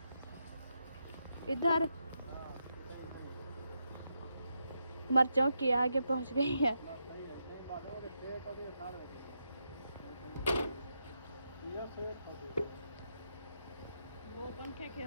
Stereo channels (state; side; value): inverted; both; correlation -0.83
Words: इधर मर्चों की आगे पहुंच गई है। वो पंखे की